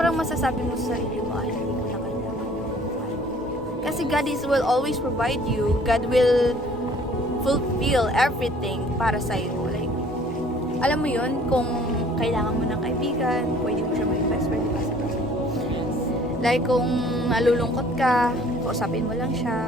masasabi mo sa sarili mo, ay, hindi ko na kailangan yung buhay. Kasi God will always provide you. God will fulfill everything para sa'yo. Like, alam mo yun, kung kailangan mo ng kaibigan, pwede mo siya maging best friend, di ba? Yes. Like, kung nalulungkot ka, kausapin mo lang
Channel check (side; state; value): both; normal; correlation 0.55